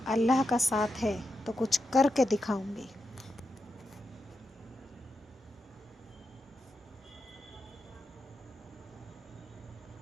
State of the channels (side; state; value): both; normal; correlation 0.86